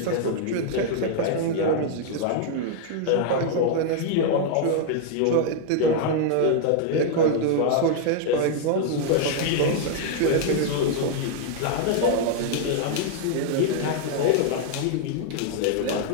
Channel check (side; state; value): both; different; correlation 0.00